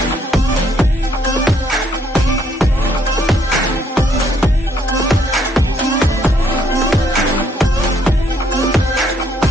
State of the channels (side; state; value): both; normal; correlation 0.69